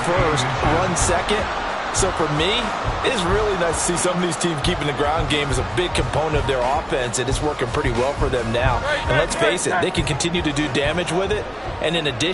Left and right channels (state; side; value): identical; both; correlation 1.00